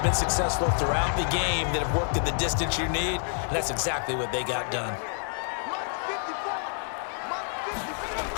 been successful throughout the game that have worked at the distance you need, and that's exactly what they got done.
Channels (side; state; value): right; silent; 57 dB below the other